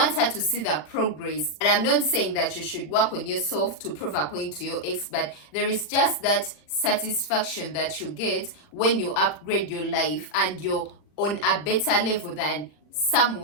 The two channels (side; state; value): right; late; 40 ms